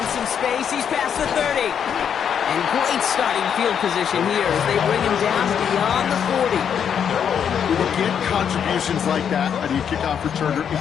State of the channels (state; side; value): quieter; right; 8.0 dB